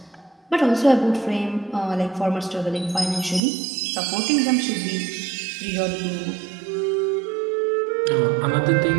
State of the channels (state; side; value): drops out; left; at 3.4 s